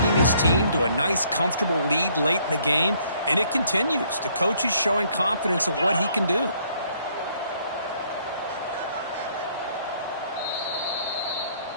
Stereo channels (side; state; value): both; inverted; correlation -0.65